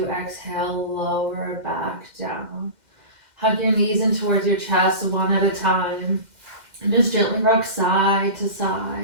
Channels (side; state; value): left; late; 2.1 ms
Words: exhale, lower back down. Hug your knees in towards your chest one at a time. And just gently rock side to